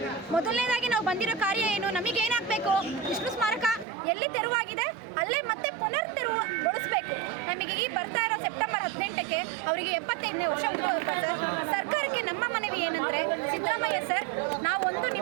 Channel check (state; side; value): drops out; left; at 3.9 s